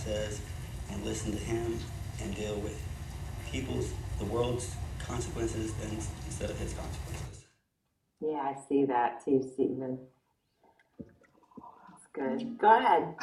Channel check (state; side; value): identical; both; correlation 1.00